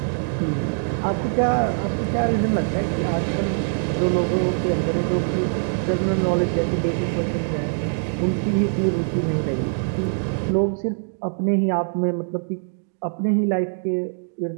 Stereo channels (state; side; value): silent; left; digital silence